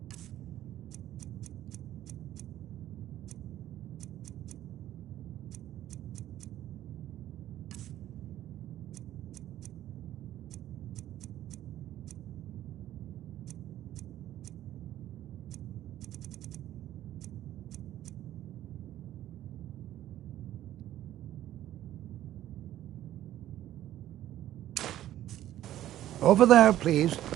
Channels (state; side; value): quieter; left; 12.9 dB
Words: Over there, please,